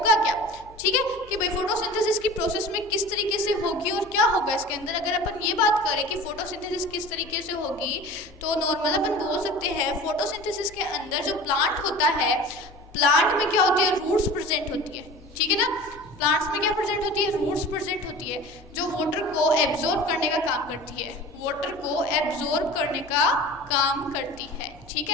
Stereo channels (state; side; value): normal; both; correlation 0.39